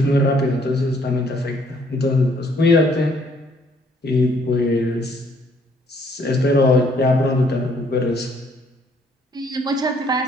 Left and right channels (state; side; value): normal; both; correlation 0.65